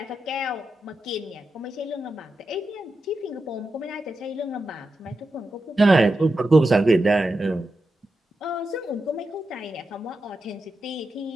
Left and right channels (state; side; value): normal; both; correlation 0.89